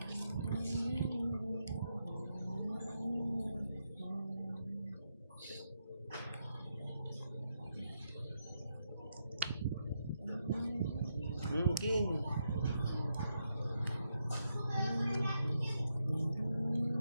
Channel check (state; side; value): inverted; both; correlation -0.82